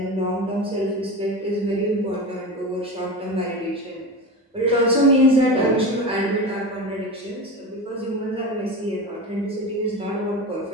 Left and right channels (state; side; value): normal; both; correlation 0.26